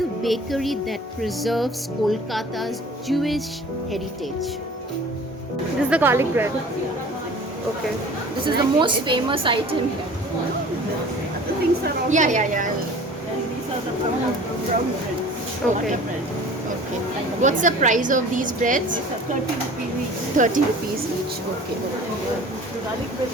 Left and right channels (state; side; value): normal; both; correlation 0.45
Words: bakery that preserves Kolkata's Jewish heritage. This is the garlic bread. Okay. This is the most famous item here. Yeah, yeah, yeah. These are the brown breads. Okay. Butter bread. Okay. What's the price of these breads? These are 30 rupees each. 30 rupees each. Okay. The garlic bread